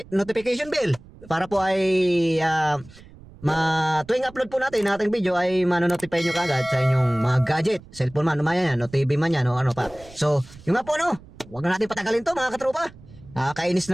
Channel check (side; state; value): right; noise; rumble, 21 dB below the sound